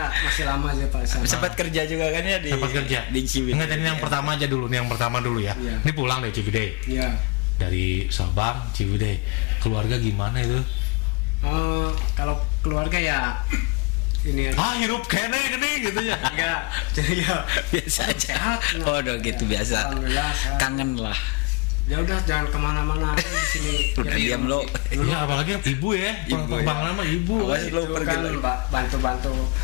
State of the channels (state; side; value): quieter; right; 27.0 dB